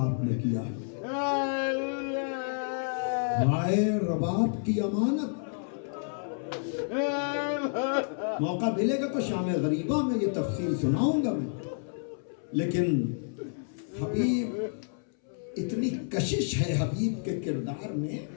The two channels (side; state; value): right; silent; 58 dB below the other